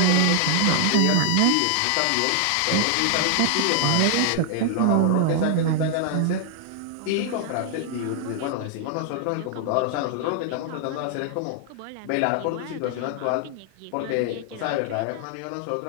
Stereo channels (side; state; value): both; different; correlation -0.01